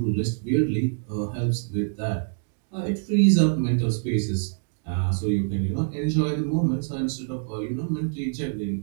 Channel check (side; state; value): left; silent; digital silence